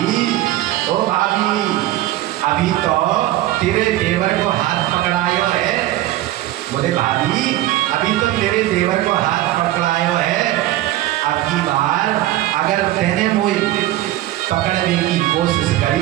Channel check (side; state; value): left; quieter; 15.2 dB